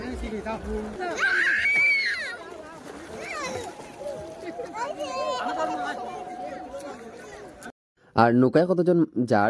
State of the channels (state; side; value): identical; both; correlation 1.00